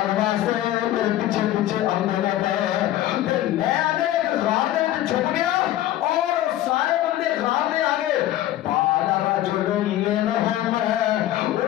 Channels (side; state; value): right; quieter; 13.7 dB